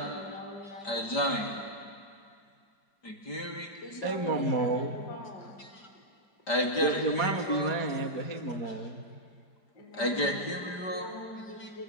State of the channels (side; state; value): right; late; 5.1 ms